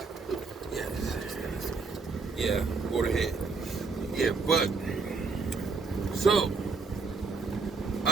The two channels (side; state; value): left; quieter; 4.4 dB